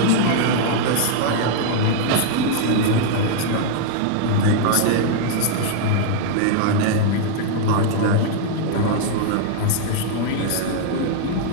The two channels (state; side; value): different; both; correlation -0.01